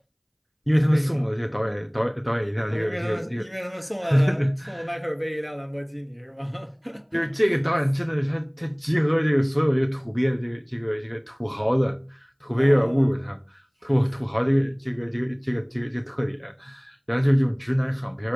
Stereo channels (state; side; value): identical; both; correlation 1.00